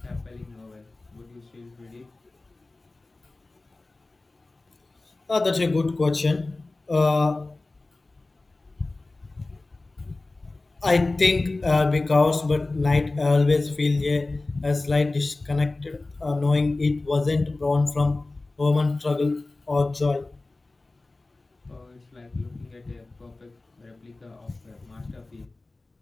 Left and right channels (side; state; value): right; quieter; 3.1 dB